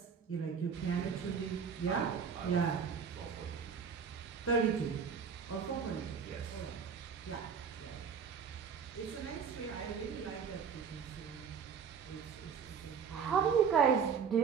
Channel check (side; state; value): left; quieter; 6.5 dB